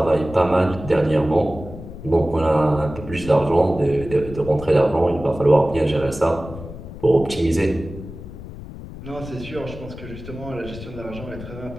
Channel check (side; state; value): left; noise; rumble, 12 dB below the sound